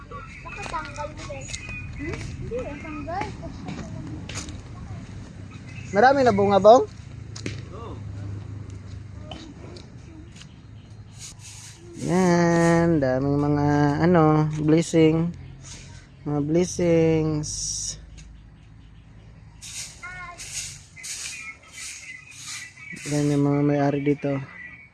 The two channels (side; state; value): both; identical; correlation 1.00